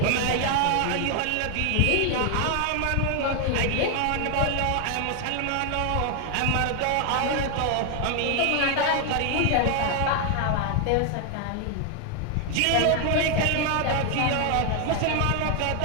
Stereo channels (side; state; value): both; different; correlation 0.00